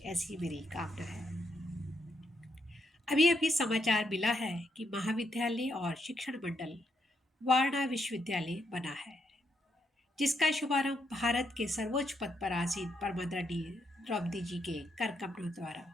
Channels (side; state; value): both; normal; correlation 0.78